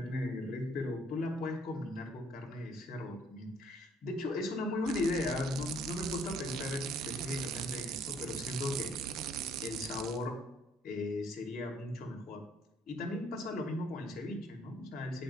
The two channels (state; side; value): normal; both; correlation 0.63